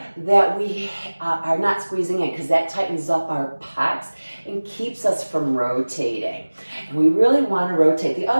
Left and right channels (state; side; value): inverted; both; correlation -1.00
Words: that we are not squeezing in, because that tightens up our pecs and keeps us from rotating. And we really want to rotate. The